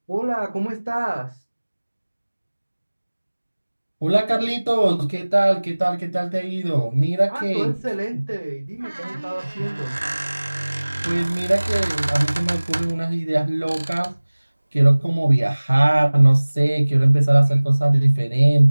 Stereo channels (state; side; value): inverted; both; correlation -1.00